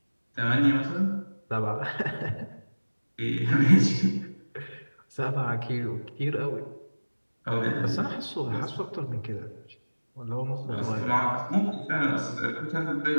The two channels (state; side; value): inverted; both; correlation -1.00